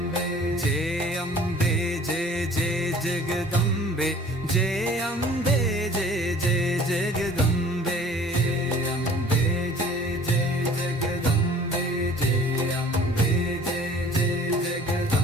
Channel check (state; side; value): normal; both; correlation 0.50